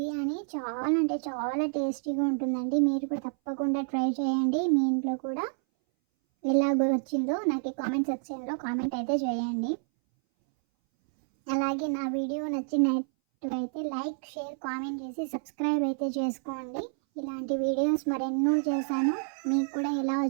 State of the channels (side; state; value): left; silent; 59 dB below the other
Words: చాలా టేస్టీగా ఉంటుందండి. మీరు కూడా తప్పకుండా ట్రై చేయండి. మీ ఇంట్లో కూడా ఎలాగో వచ్చిందో నాకు కామెంట్ సెక్షన్లో కామెంట్ అయితే చేయండి. అలాగే నా వీడియో నచ్చినట్టయితే లైక్, షేర్, కామెంట్ చేసి సబ్స్క్రైబ్ అయితే చేసుకోండి. ఇలాంటి వీడియోస్ మరెన్నో చేశాను. మీకు కూడా ఎలా